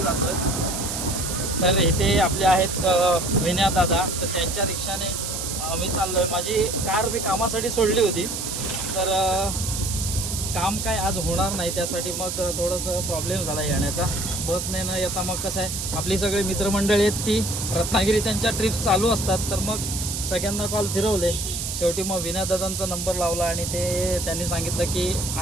जातो आहे। तर इथे आपले आहेत विनया दादा, तर त्यांच्या रिक्षाने मी चाललो आहे। माझी कार मी कामासाठी सोडली होती, तर काम काय आज होणार नाही, त्यासाठी मग थोडंसं प्रॉब्लेम झाला येण्याचा। बसने न येता मग कसं आहे, आपली सगळी मित्रमंडळी आहेत ती रत्नागिरी त्यांच्या ट्रिप्स चालू असतात, तर मग सगळ्यांना कॉल फिरवले। शेवटी मग विनयदादांचा नंबर लावला आणि त्यांनी सांगितलं की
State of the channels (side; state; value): right; noise; hiss, 4 dB below the sound